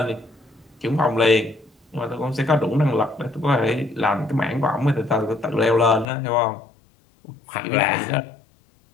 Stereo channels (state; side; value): drops out; right; at 6.1 s